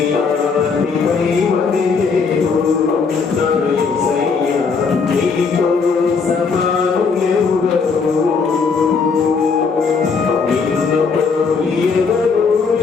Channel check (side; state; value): right; quieter; 5.1 dB